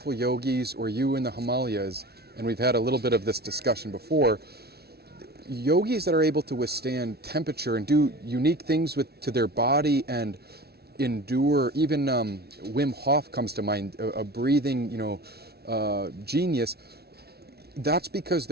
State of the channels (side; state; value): left; late; 0.46 ms